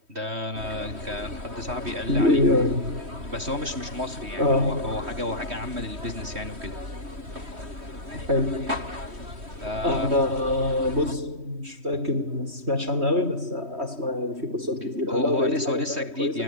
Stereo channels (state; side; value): late; left; 3.1 ms